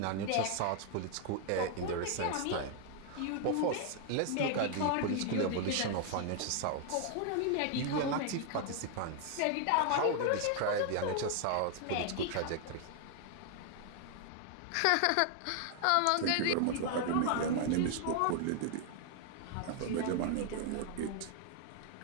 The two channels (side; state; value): both; different; correlation 0.00